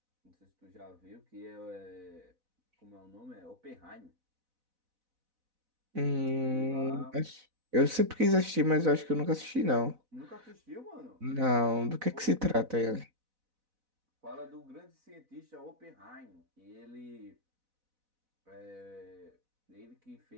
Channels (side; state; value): left; late; 4.0 ms